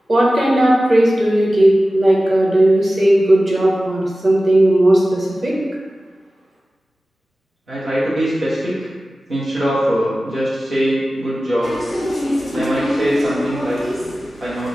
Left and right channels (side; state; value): both; normal; correlation 0.96